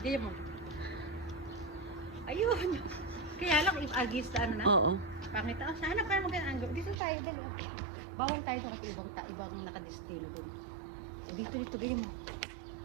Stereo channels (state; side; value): drops out; left; at 7.0 s